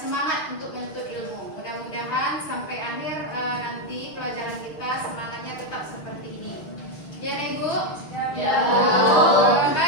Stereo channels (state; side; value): late; right; 6.4 ms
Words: untuk menuntut ilmu. Mudah-mudahan sampai akhir nanti pelajaran kita semangatnya tetap seperti ini. Ya, Nek Ibu? Ya, Bu.